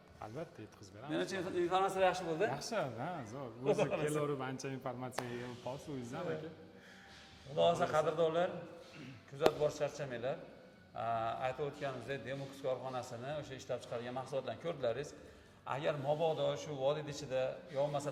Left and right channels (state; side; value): identical; both; correlation 1.00